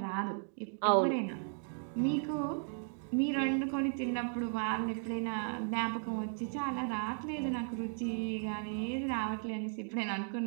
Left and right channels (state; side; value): silent; left; 54 dB below the other